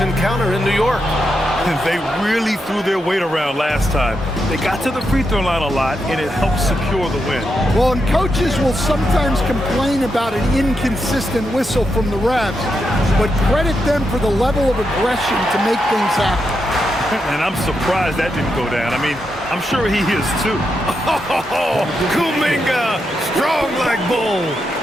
encounter in New York. They really threw their weight around last time. They got to the free throw line a lot, and it helped secure the win. Well, and coaches will sometimes complain about an inconsistent whistle from the refs, but credit them for the level of aggression to make things happen. And I'm surprised that didn't go down. I mean, I'm sure he is too. Oh, Kuminga, strong like bull.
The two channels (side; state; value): both; normal; correlation 0.84